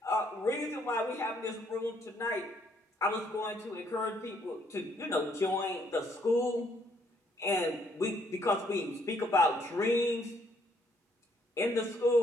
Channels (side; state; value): both; normal; correlation 0.68